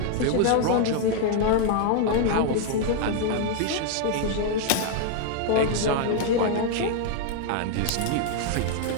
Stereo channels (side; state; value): both; different; correlation 0.00